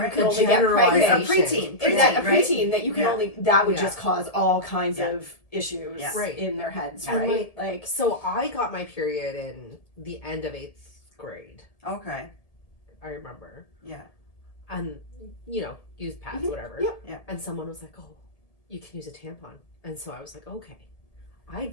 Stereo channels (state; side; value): late; right; 1.7 ms